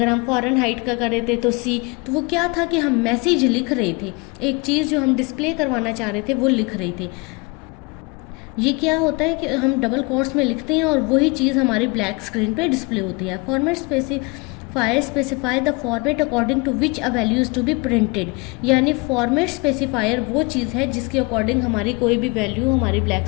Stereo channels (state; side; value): quieter; right; 27.8 dB